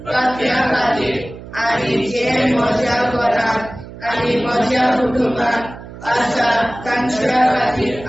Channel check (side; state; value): right; noise; hum, 15 dB below the sound